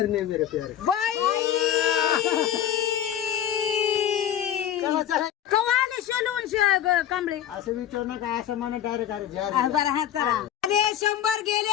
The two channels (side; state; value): right; quieter; 10.6 dB